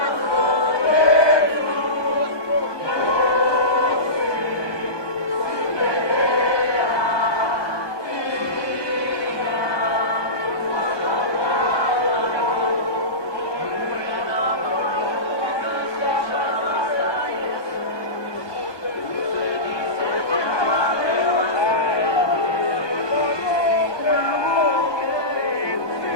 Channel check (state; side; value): late; right; 1.2 ms